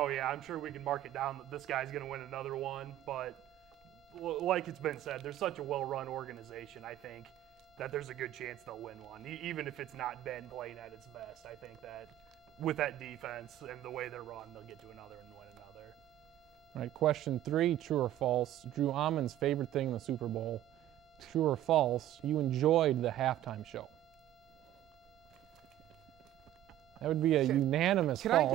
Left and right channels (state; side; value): quieter; left; 13.0 dB